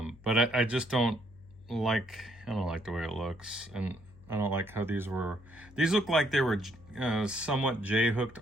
I just don't like the way it looks. And I don't like how these look like they were somewhat J-hooked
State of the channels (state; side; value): noise; left; hum, 22 dB below the sound